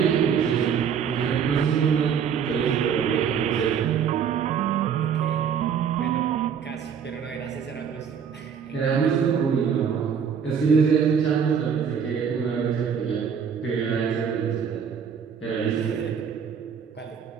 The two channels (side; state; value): left; quieter; 7.4 dB